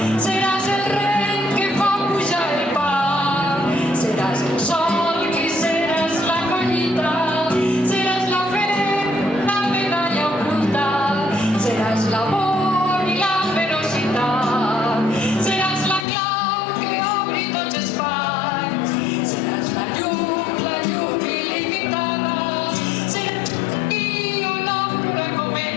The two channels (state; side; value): drops out; right; at 16.1 s